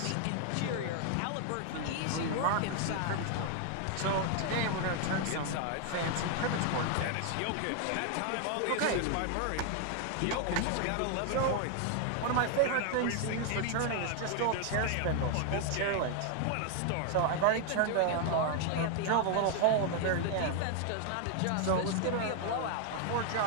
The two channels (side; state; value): both; different; correlation 0.00